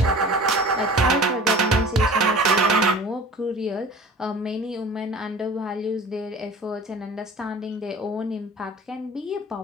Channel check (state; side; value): normal; both; correlation 0.42